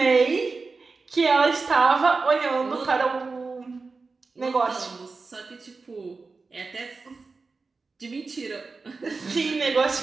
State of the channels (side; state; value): left; quieter; 4.2 dB